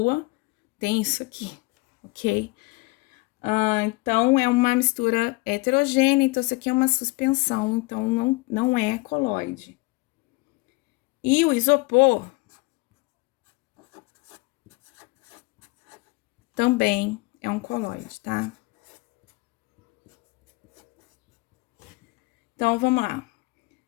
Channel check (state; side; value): quieter; right; 24.1 dB